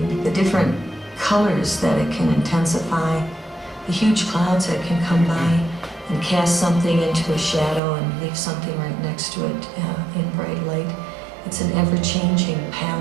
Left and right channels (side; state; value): left; drops out; at 7.8 s